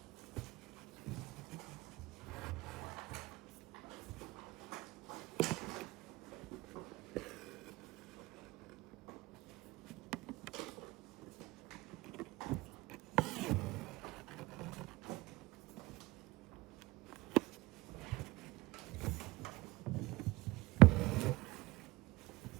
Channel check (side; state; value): left; quieter; 20.7 dB